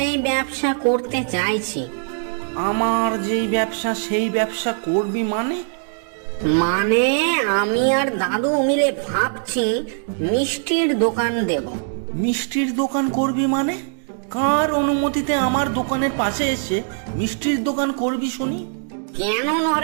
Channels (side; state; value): left; silent; digital silence